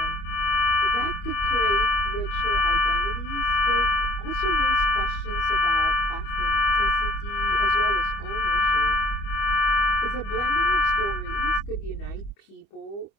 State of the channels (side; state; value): right; late; 25 ms